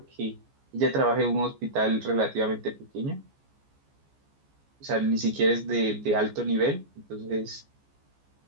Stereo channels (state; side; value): late; left; 14 ms